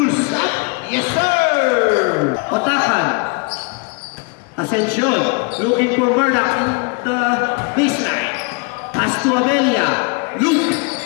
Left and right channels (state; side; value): quieter; right; 31.5 dB